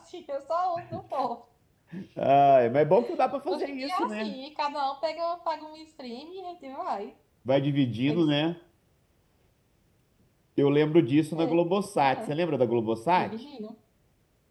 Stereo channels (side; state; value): both; identical; correlation 1.00